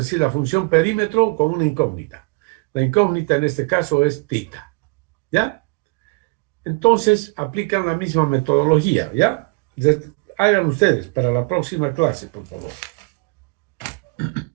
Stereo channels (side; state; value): left; quieter; 28.9 dB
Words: la función perímetro con una incógnita. La incógnita en este caso es tita. ¿Ya? Entonces aplican la misma metodología. ¿Ya? Hagan ustedes para la próxima clase, por favor.